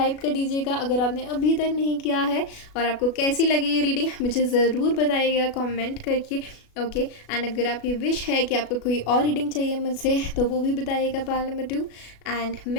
कर दीजिएगा अगर आपने अभी तक नहीं किया है। और आपको कैसी लगी ये रीडिंग मुझे ज़रूर बताइएगा कमेंट करके। ओके, एंड अगर आपकी विश है कि आपको कोई और रीडिंग चाहिए मुझसे तो वो भी बताइएगा। पाइल नंबर 2, एंड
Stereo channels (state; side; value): late; right; 37 ms